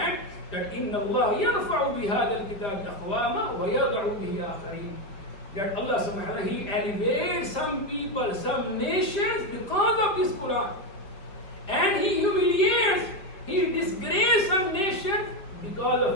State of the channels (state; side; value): late; right; 4.9 ms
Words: that إن الله يرفع بهذا الكتاب أقواما ويضع به آخرين. That Allah subhanahu wa ta'ala, he elevates some people, some nations because of this Quran. And he humiliates, he disgraces some nation because